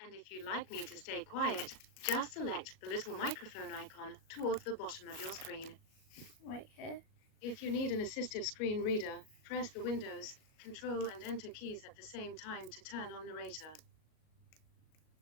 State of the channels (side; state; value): right; late; 38 ms